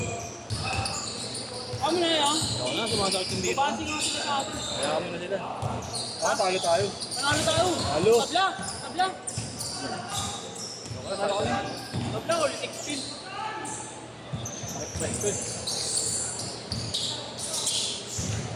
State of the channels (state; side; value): identical; both; correlation 1.00